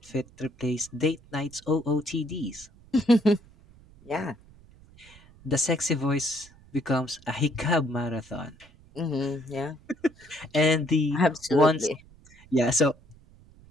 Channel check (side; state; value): right; noise; rumble, 25 dB below the sound